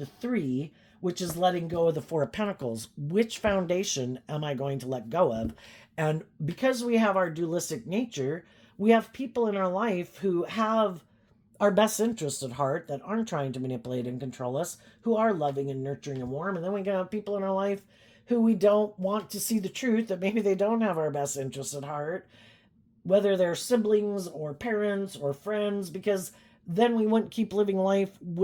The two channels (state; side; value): identical; both; correlation 1.00